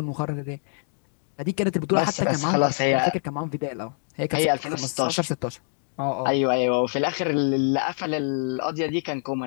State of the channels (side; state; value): right; silent; digital silence